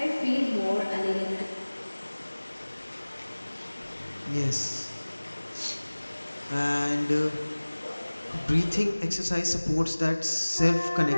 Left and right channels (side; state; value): both; inverted; correlation -1.00